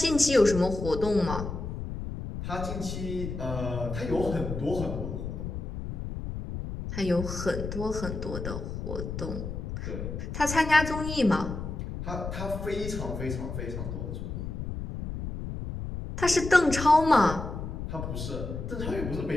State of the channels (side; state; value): left; noise; rumble, 6 dB below the sound